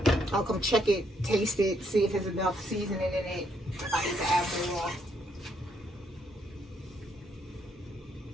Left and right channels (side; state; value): both; normal; correlation 0.73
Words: I'll come check it, taste it, see if there's enough seasoning in it. If I need to add more.